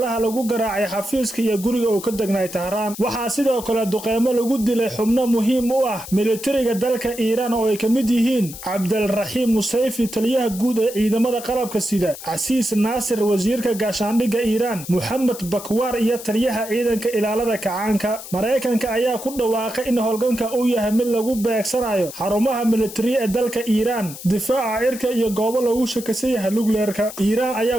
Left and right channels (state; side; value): noise; left; hiss, 13 dB below the sound